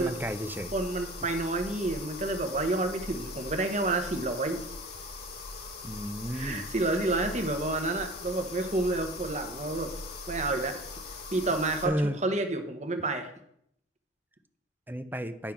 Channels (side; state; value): both; normal; correlation 0.40